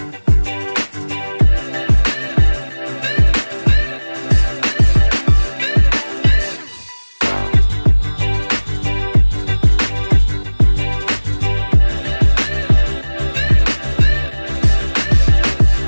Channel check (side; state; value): both; inverted; correlation -1.00